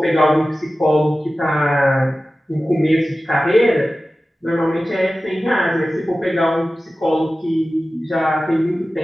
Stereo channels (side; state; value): both; normal; correlation 0.95